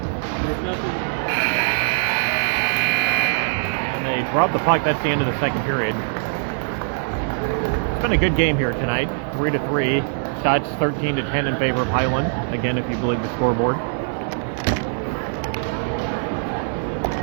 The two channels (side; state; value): left; silent; digital silence